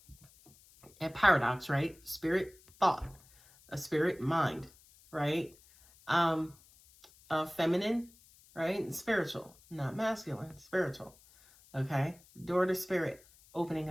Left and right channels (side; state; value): left; noise; hiss, 26 dB below the sound